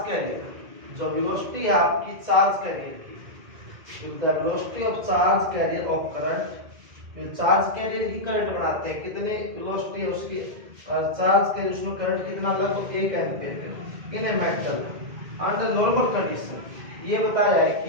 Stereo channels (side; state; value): left; late; 2.1 ms